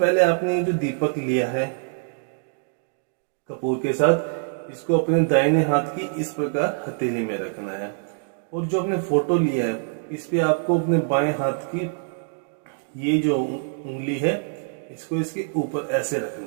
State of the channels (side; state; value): left; silent; digital silence